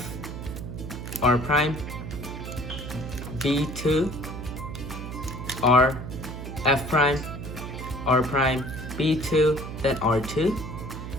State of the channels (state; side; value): noise; right; hum, 8 dB below the sound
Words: R prime, B2, R, F prime, R prime, B2, then R2.